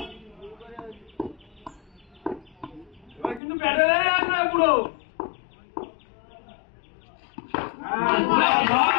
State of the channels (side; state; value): right; drops out; at 3.4 s